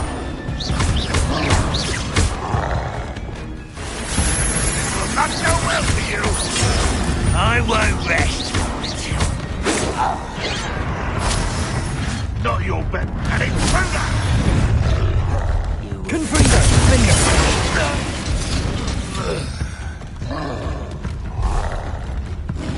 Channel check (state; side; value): identical; both; correlation 1.00